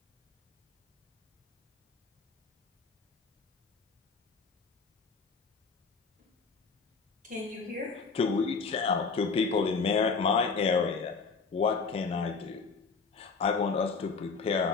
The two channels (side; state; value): right; quieter; 4.8 dB